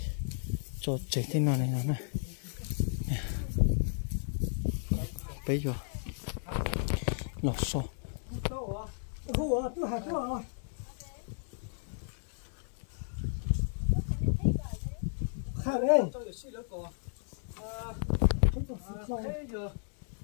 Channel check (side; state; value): right; silent; digital silence